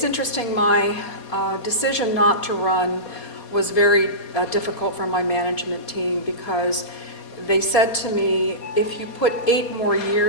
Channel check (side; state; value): right; late; 4.2 ms